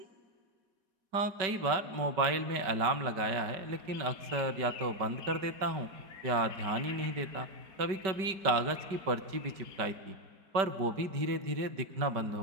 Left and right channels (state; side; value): late; left; 5.2 ms